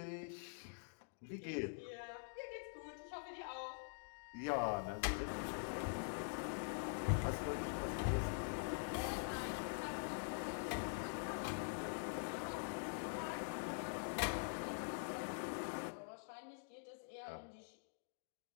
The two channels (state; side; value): silent; right; digital silence